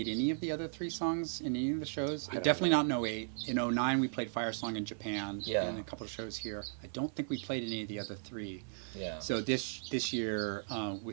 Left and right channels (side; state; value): left; silent; 54 dB below the other